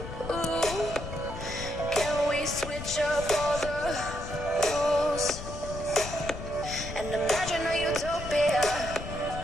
Ooh, can we switch up all the rules and imagine a utopia?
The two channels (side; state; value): left; noise; rumble, 9 dB below the sound